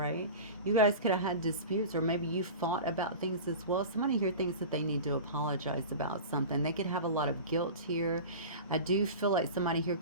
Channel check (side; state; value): both; inverted; correlation -0.33